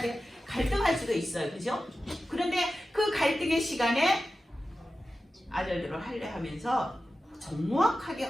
돼. 갈등할 수도 있어요. 그죠? 그런데 그 갈등의 시간에 아들들을 할례 하면서 정확하게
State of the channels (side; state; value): both; normal; correlation 0.93